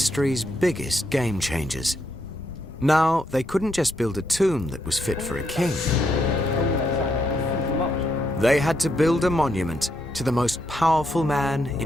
biggest game changers. Now, they couldn't just build a tomb that was fit for a king. They had to build a monument to the most powerful man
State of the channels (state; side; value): normal; both; correlation 0.78